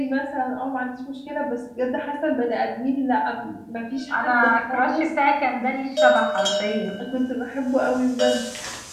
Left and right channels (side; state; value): both; identical; correlation 1.00